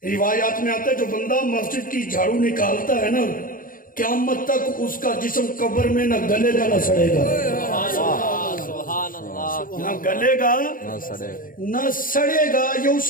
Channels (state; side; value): late; right; 0.40 ms